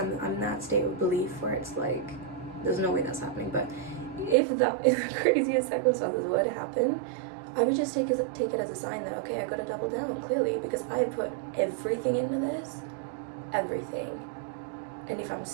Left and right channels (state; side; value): drops out; left; at 4.4 s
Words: in that state of belief where it's like, there's no way that's happening. But if the craziest circumstances were to happen, I would just take it as a sign that, okay, I gotta double down, clearly, because I put everything into this, everything. And if I'm